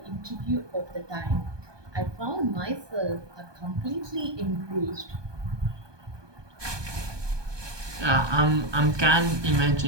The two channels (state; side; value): late; left; 1.2 ms